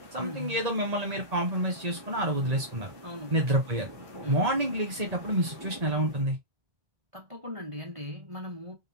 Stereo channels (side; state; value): left; late; 1.8 ms